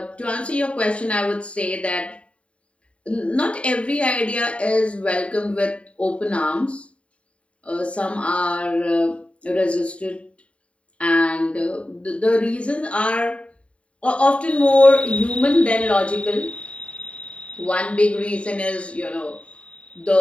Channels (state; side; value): late; right; 0.062 ms